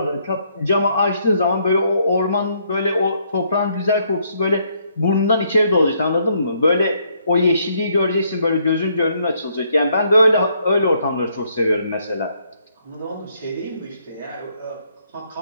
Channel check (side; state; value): both; inverted; correlation -0.71